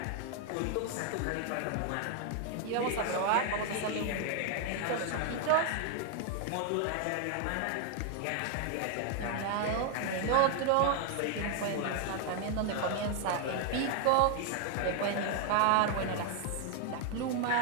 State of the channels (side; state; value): both; different; correlation 0.01